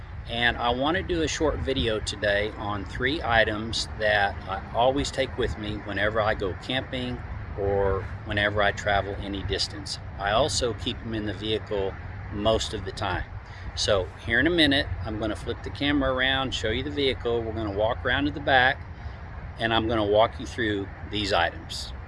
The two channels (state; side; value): identical; both; correlation 1.00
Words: and I want to do a short video today on 3 items that I always take with me whenever I go camping or whenever I travel any distance. I also keep them in the vehicle most of the time. So here in a minute I'm going to flip the camera around, show you the vehicle. We're going to walk around to the back and I'm going to walk you through these items.